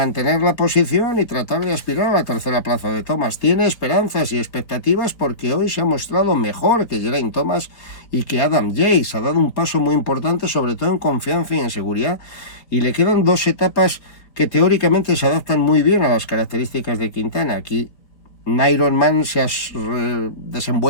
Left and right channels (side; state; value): right; late; 4.2 ms